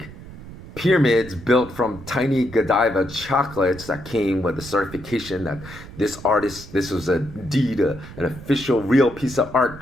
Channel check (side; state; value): right; noise; rumble, 15 dB below the sound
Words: pyramids built from tiny Godiva chocolates that came with a certification that this was indeed an official real piece of art